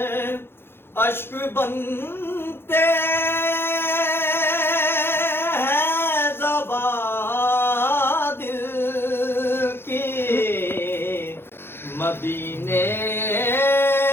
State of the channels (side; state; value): right; late; 0.11 ms